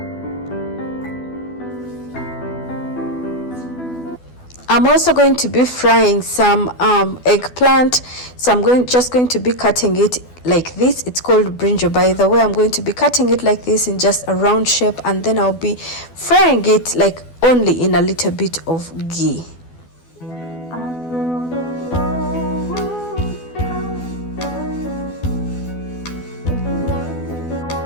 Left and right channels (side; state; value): right; late; 12 ms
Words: I'm also going to be frying some eggplant, so I'm just going to be cutting it like this. It's called brinjal, by the way. I'm going to be cutting it like this in just a round shape, and then I'll be frying it like only in a little bit of ghee.